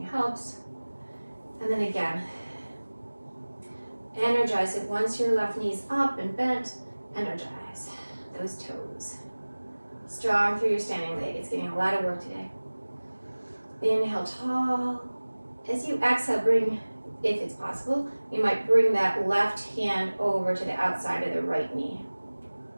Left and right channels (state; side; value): inverted; both; correlation -1.00